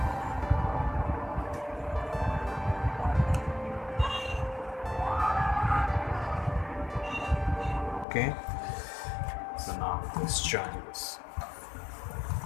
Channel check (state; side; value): drops out; right; at 8.1 s